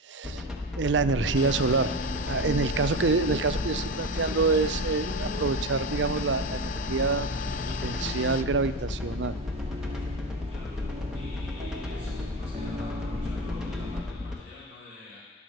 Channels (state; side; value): normal; both; correlation 0.21